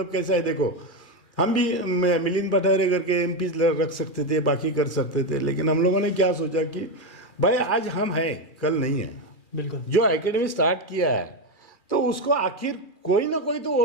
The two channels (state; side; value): late; right; 2.4 ms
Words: कैसा है, देखो हम भी मिलिंद पठारे करके एमपी रख सकते थे, बाकी कर सकते थे, लेकिन हम लोगों ने क्या सोचा कि भाई आज हम हैं, कल नहीं है। बिल्कुल। जो एकेडमी स्टार्ट किया है तो उसको आखिर कोई ना कोई तो